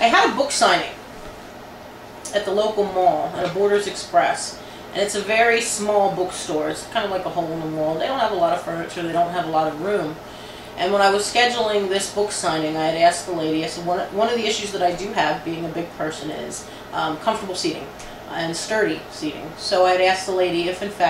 a book signing at the local mall, at a Borders Express. And it's a very small bookstore. It's kind of like a hole in the wall. They don't have a lot of furniture. They don't have a lot of room. And when I was scheduling this book signing, I had asked the lady, I said, one of the issues that I do have, being a big person, is comfortable seating and sturdy seating. So I had asked the lady if, in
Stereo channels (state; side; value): identical; both; correlation 1.00